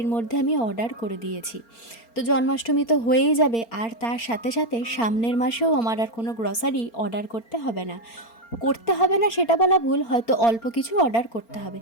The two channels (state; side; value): late; right; 4.4 ms